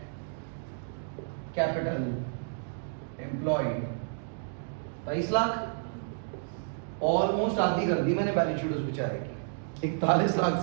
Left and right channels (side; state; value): left; silent; digital silence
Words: capital employed. 23 lakh, almost आधी कर दी मैंने बैलेंस शीट उस बेचारे की, 41 लाख